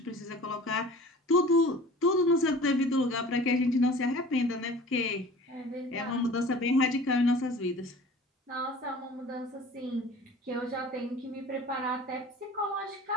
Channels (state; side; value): normal; both; correlation 0.43